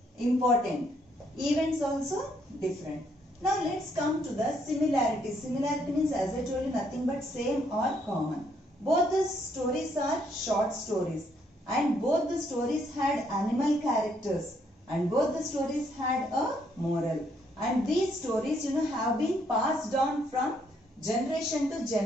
important. Events also different. Now let's come to the similarities. Similarity means, as I told you, nothing but same or common. Both the stories are short stories, and both the stories had animal characters, and both the stories had a moral. And these stories, have been passed on from generation to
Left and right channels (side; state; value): both; normal; correlation 0.71